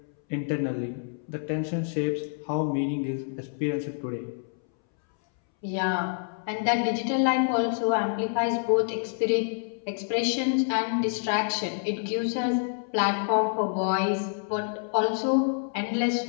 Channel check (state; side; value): silent; right; 60 dB below the other